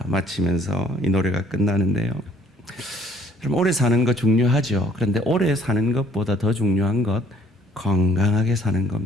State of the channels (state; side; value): normal; both; correlation 0.61